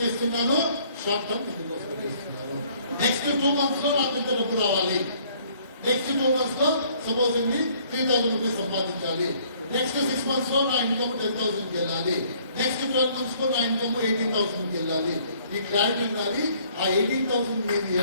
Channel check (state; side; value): inverted; both; correlation -0.60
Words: చేస్తున్నాను, షార్ట్ టర్మ్ ఇందుకోసం చేస్తున్నాను. నెక్స్ట్ 2 months లో నాకు ఇంత డబ్బు రావాలి. నెక్స్ట్ 2 months లో సపోజ్ 3,000 రూపీస్ సంపాదించాలి. నెక్స్ట్ 6 months లో నా ఇన్కమ్ 10,000 వెళ్ళాలి. నెక్స్ట్ 12 months లో నా ఇన్కమ్ 18,000 వెళ్ళాలి. ఈ క్లారిటీ ఉండాలి. ఆ 18,000 నేను